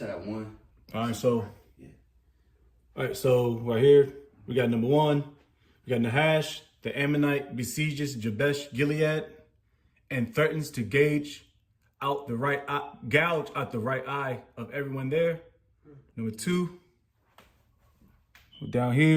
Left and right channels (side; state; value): both; identical; correlation 1.00